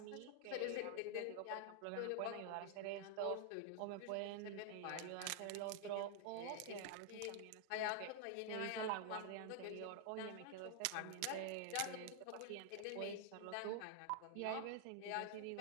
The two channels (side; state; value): both; different; correlation 0.00